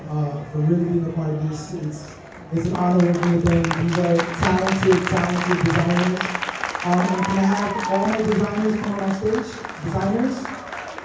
for really being a part of this. It's an honor working with them. These are talented designers. And can I have all my designers come on stage? Designers?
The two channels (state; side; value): identical; both; correlation 1.00